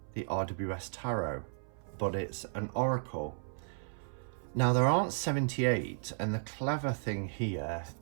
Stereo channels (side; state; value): left; silent; 55 dB below the other